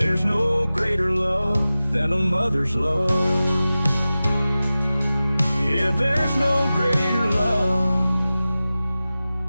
no greater love than a mother's love. Yeah, there's no greater love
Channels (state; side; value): inverted; both; correlation -0.95